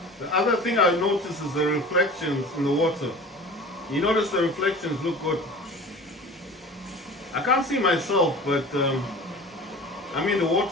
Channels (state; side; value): normal; both; correlation 0.39